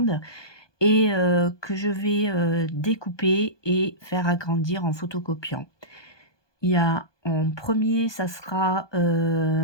et que je vais, découper et faire agrandir en photocopiant. Il y a en premier, ça sera,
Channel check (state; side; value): late; right; 1.2 ms